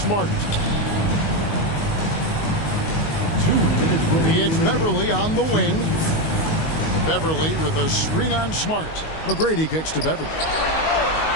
2 minutes remaining. It's Beverly on the wing. Beverly with a screen on Smart. McGrady kicks to Beverly.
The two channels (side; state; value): right; late; 19 ms